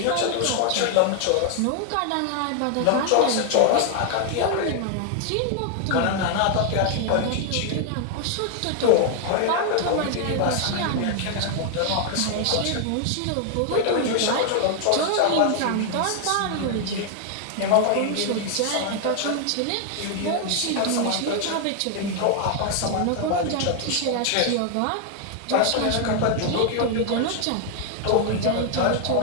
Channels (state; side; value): different; both; correlation 0.00